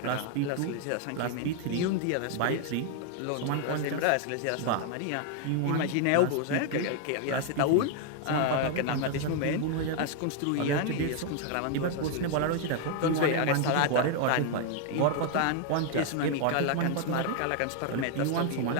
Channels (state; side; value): different; both; correlation 0.00